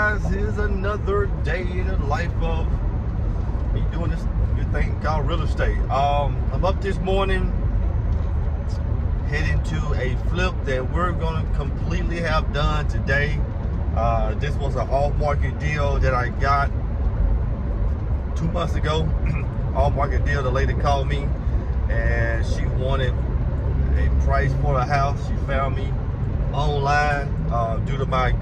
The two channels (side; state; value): both; identical; correlation 1.00